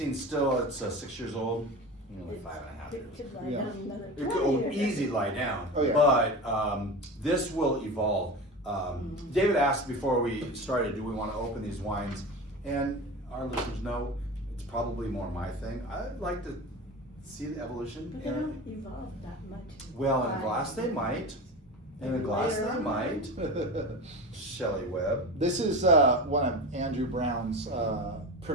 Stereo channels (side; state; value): both; normal; correlation 0.28